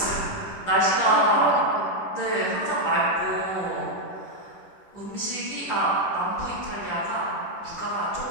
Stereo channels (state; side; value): late; right; 10 ms